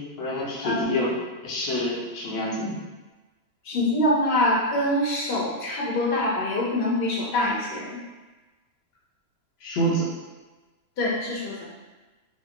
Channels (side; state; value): right; late; 3.0 ms